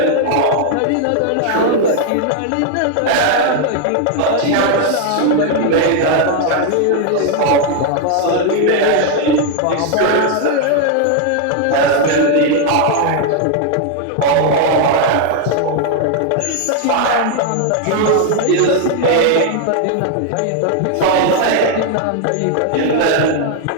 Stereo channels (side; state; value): both; different; correlation 0.00